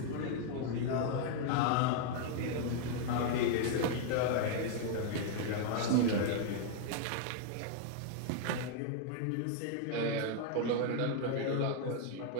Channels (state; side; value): different; both; correlation 0.00